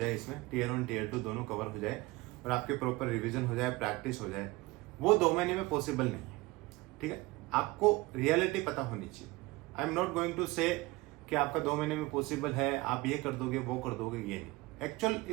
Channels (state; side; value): quieter; left; 21.7 dB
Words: इसमें टीयर 1 टीयर 2 दोनों कवर हो जाए और आपके प्रॉपर रिवीजन हो जाए, प्रैक्टिस हो जाए। वो 2 महीने में पॉसिबल नहीं है, ठीक है। आपको रियलिटी पता होनी चाहिए। I am not going to say कि आपका 2 महीने में पॉसिबल है, आप ये कर दोगे वो कर दोगे, ये नहीं। एक्चुअल